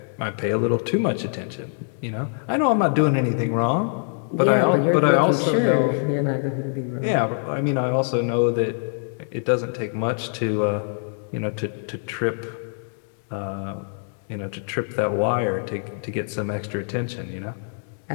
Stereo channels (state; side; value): silent; right; 63 dB below the other